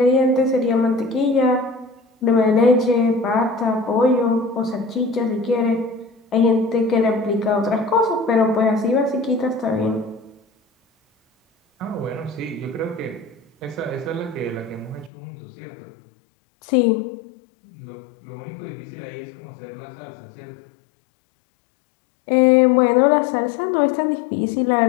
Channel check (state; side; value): drops out; right; at 15.1 s